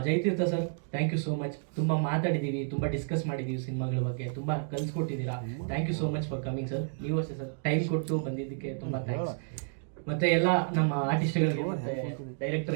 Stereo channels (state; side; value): silent; left; digital silence